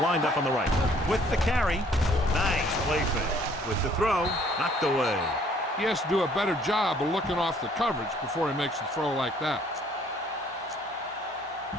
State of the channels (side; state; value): both; normal; correlation 0.60